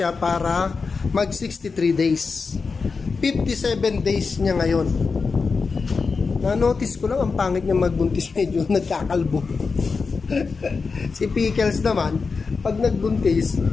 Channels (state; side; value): quieter; right; 4.7 dB